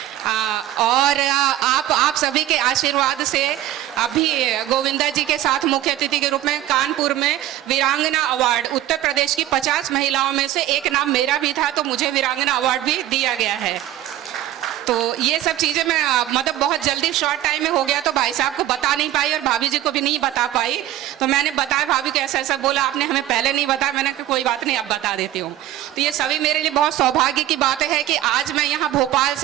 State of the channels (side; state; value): left; quieter; 13.3 dB